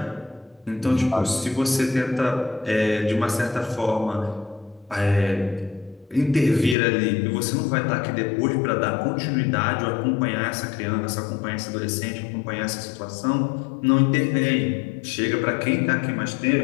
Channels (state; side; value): drops out; right; at 6.8 s